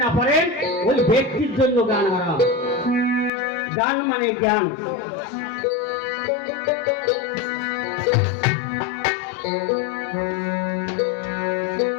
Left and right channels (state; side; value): drops out; right; at 3.3 s